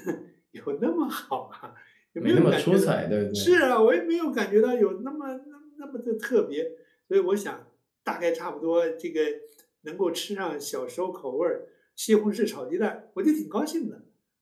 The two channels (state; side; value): identical; both; correlation 1.00